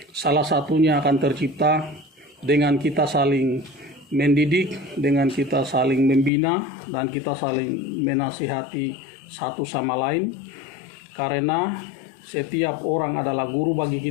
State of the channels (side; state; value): right; drops out; at 6.3 s